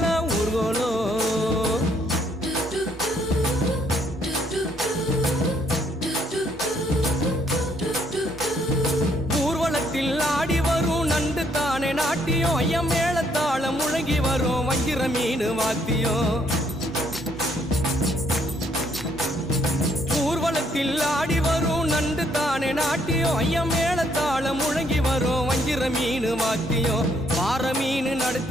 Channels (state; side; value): normal; both; correlation 0.69